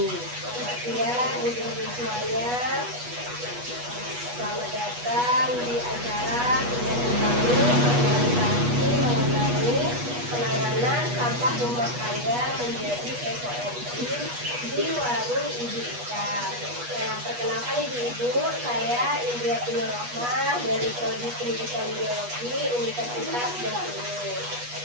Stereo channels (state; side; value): late; left; 8.2 ms